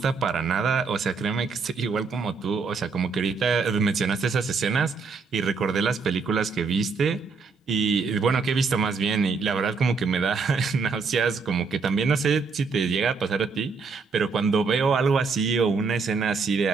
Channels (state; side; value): quieter; left; 4.8 dB